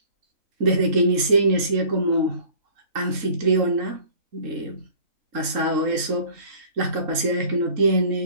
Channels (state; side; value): late; left; 3.7 ms